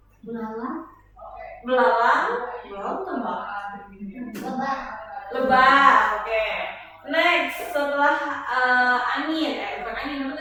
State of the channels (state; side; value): identical; both; correlation 1.00